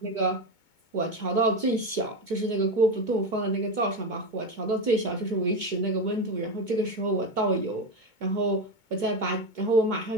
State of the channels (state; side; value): late; left; 2.2 ms